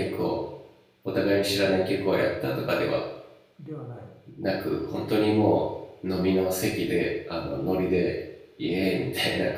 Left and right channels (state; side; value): identical; both; correlation 1.00